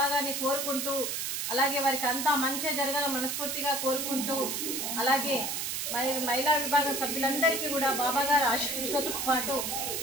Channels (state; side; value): noise; right; hiss, 2 dB below the sound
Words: గారిని కోరుకుంటూ, అలాగే వారికి అంతా మంచి జరగాలని మనస్ఫూర్తిగా కోరుకుంటూ, అలాగే మహిళా విభాగం సభ్యులందరికీ కూడా బాబా గారి ఆశీస్సులతో పాటు